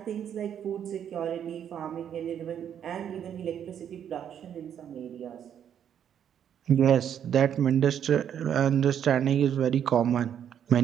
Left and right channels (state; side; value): quieter; left; 9.1 dB